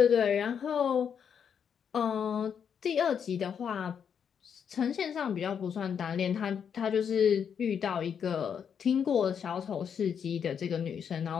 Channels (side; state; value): right; quieter; 7.5 dB